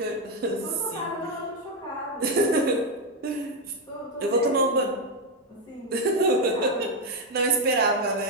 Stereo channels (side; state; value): both; normal; correlation 0.05